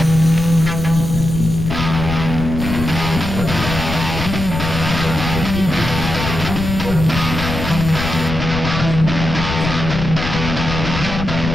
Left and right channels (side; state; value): left; noise; rumble, 5 dB below the sound